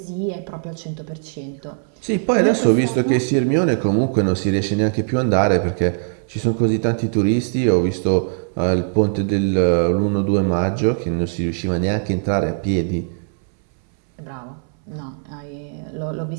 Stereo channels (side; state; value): left; silent; 63 dB below the other